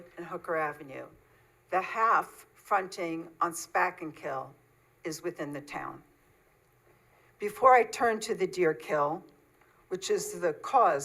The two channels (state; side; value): identical; both; correlation 1.00